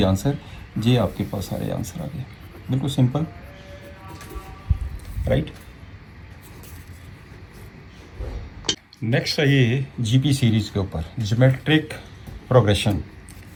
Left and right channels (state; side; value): identical; both; correlation 1.00